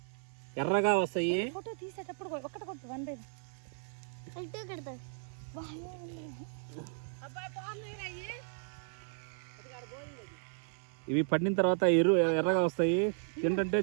ఎర్రగా వస్తాయి. ఇవి పండిన తర్వాత ఎర్రగా వస్తాయి. ఏంటంటే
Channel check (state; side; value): silent; left; 55 dB below the other